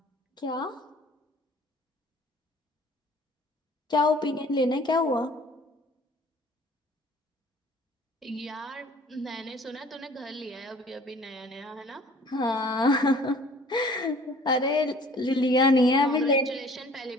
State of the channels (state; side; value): normal; both; correlation 0.51